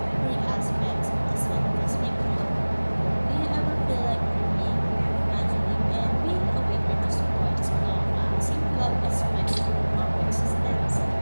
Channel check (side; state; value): both; inverted; correlation -1.00